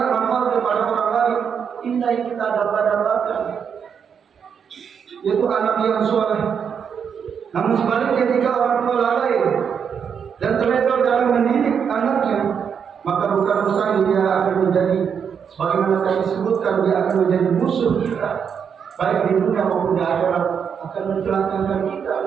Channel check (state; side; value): quieter; left; 7.2 dB